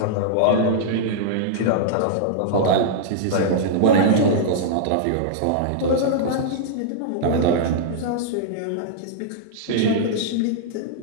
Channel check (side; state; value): both; different; correlation -0.02